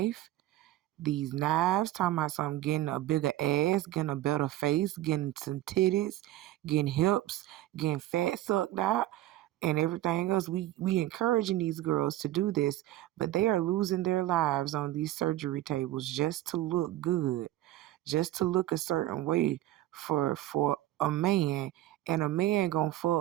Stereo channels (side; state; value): left; quieter; 14.8 dB